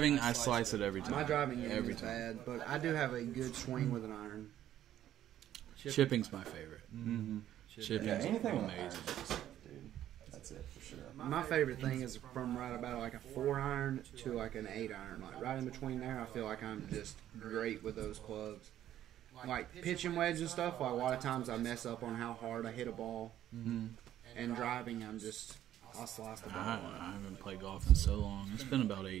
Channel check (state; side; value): quieter; left; 11.9 dB